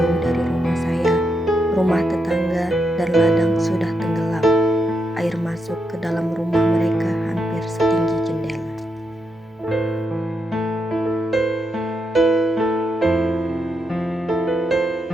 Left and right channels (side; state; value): both; normal; correlation 0.83